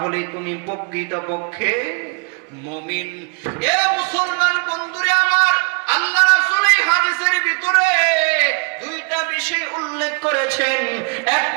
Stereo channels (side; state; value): left; quieter; 34.6 dB